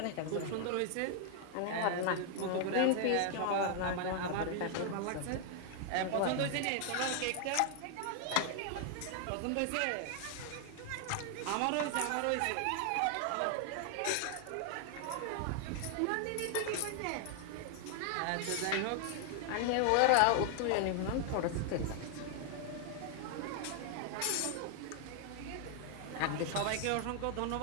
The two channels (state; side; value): different; both; correlation 0.00